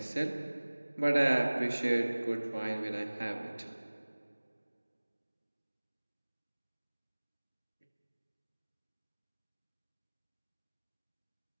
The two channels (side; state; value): both; inverted; correlation -1.00